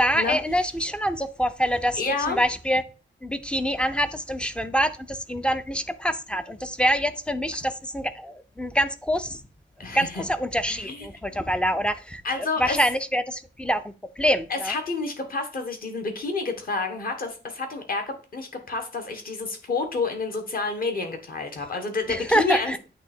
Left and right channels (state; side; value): normal; both; correlation 0.62